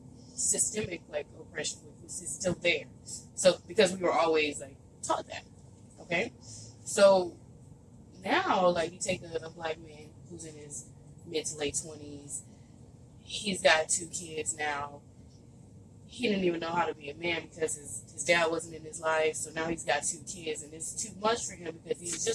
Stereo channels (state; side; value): identical; both; correlation 1.00